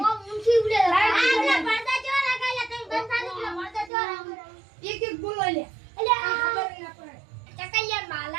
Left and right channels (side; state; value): left; drops out; at 3.9 s